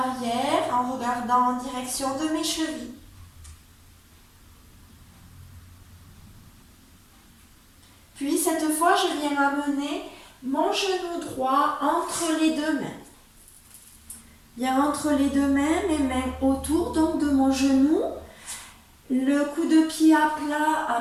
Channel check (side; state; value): both; identical; correlation 1.00